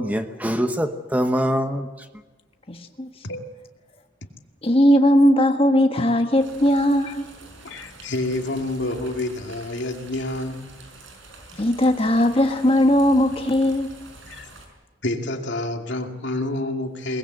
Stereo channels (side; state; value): both; normal; correlation 0.74